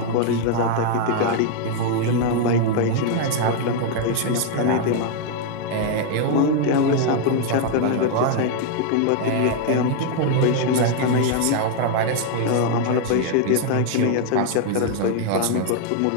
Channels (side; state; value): both; different; correlation 0.00